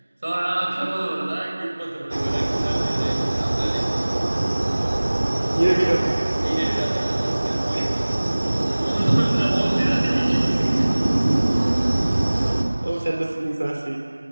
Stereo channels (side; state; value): both; inverted; correlation -1.00